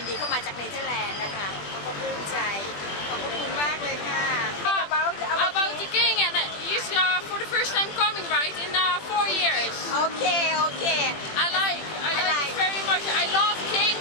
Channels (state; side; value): late; right; 21 ms